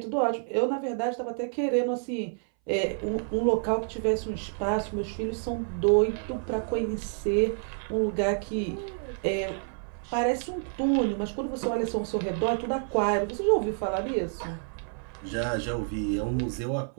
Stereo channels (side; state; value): left; silent; 59 dB below the other